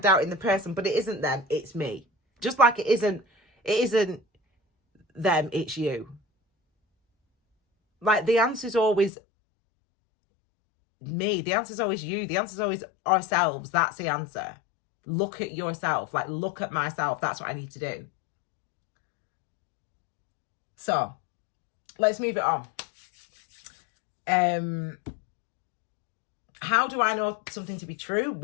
person, but it isn't them, it's me. Just like it isn't them, it's you. Like, the answer's always me. The answer's always you. The answer's always ourselves. That's the answer. Look at yourself. Like, look at myself. That's what I need to do. So let's move it on. How do I know something to be true?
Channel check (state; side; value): drops out; right; at 9.1 s